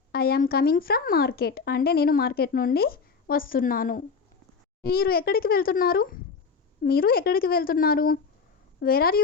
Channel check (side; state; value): right; quieter; 5.2 dB